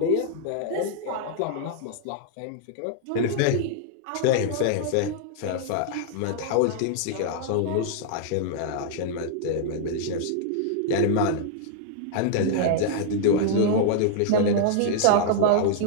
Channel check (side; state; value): both; different; correlation -0.01